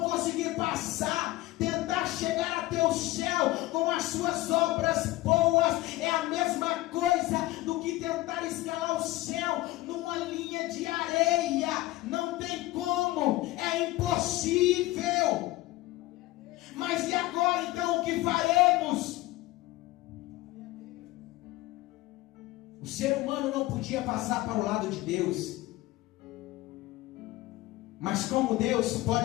conseguir passar. Tentar chegar até o céu com as suas obras boas é a mesma coisa do que tentar escalar o céu numa linha de areia. Não tem como, é impossível. Mas e agora então o que faremos? O ser humano não podia passar para o lado de Deus, mas como Deus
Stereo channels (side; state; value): right; quieter; 18.2 dB